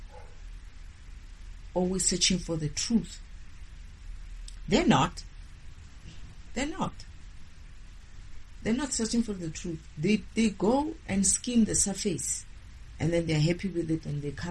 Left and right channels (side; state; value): both; identical; correlation 1.00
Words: always searching for the truth. They're not. They're not searching for the truth. They go and skim the surface, and then they're happy with it, and they